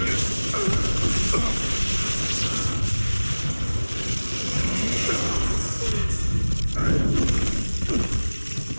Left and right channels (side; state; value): both; inverted; correlation -1.00